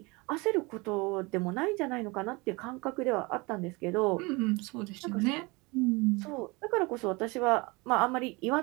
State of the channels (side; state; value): left; quieter; 25.9 dB